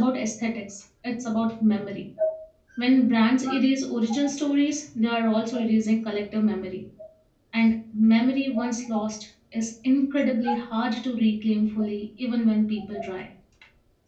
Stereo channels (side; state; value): both; identical; correlation 1.00